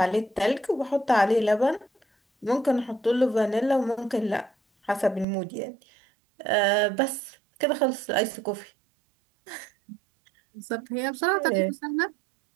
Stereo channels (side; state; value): left; drops out; at 5.2 s